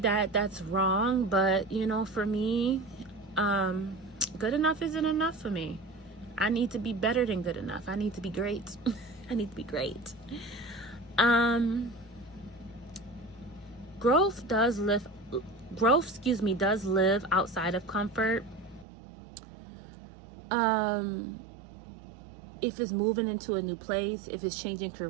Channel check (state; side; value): drops out; left; at 18.9 s